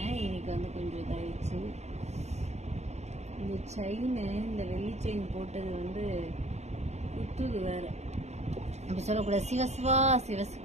இன்னைக்கு வந்து கொஞ்சம் இதாகிடுச்சு. இந்த செயின், இந்த வெள்ளி செயின் போட்டது வந்து குத்துது வேற. அப்படி சொல்லக்கூடாது.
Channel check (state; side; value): late; left; 0.32 ms